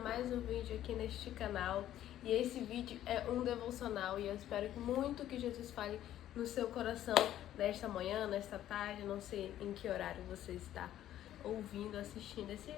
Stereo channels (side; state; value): right; quieter; 12.3 dB